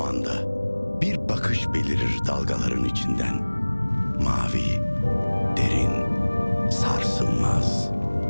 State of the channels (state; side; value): inverted; both; correlation -1.00